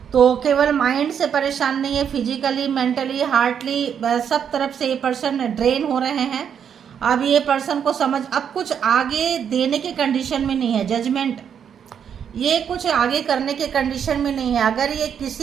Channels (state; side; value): quieter; left; 8.0 dB